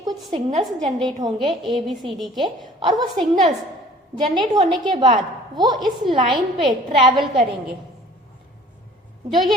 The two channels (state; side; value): normal; both; correlation 0.50